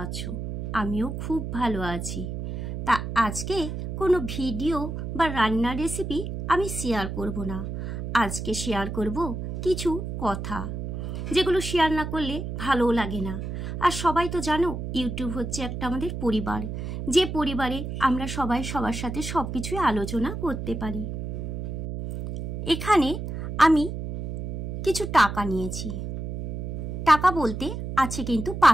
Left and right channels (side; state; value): right; noise; hum, 6 dB below the sound